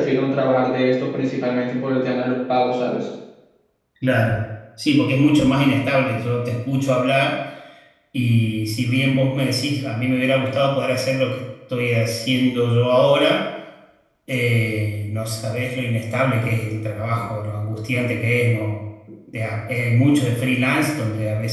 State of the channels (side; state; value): both; identical; correlation 1.00